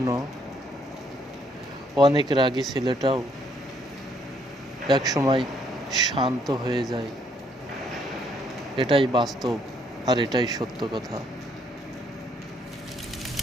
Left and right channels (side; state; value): both; normal; correlation 0.69